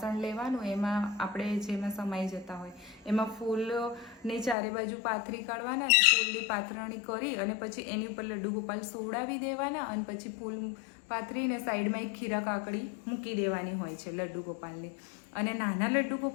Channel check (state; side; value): drops out; right; at 4.5 s